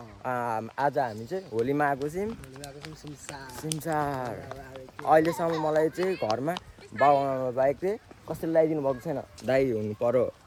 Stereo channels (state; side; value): identical; both; correlation 1.00